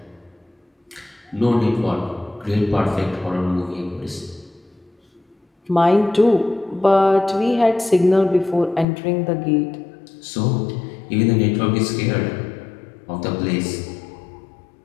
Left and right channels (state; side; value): drops out; right; at 8.8 s